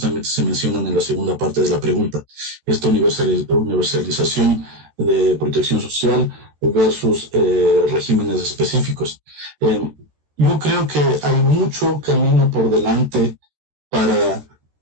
se mencionan en la segunda parte de la pregunta. Esta universalización de protección social versus regímenes específicos. Yo creo que hay mucho camino por delante para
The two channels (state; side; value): late; left; 14 ms